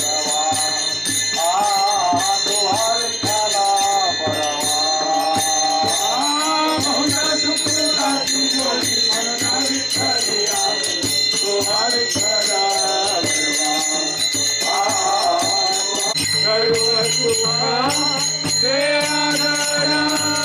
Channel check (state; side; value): identical; both; correlation 1.00